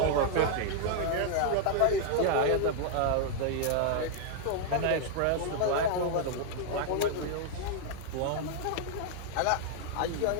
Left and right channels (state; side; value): different; both; correlation -0.01